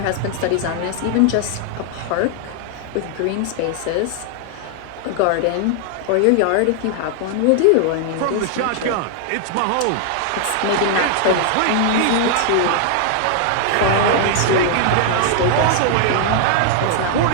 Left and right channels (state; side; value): different; both; correlation 0.00